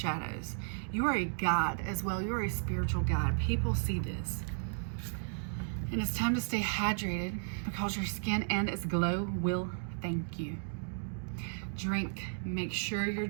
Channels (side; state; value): left; silent; digital silence